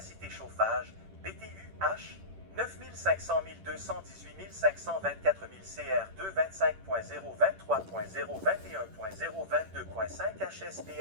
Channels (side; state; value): left; late; 10 ms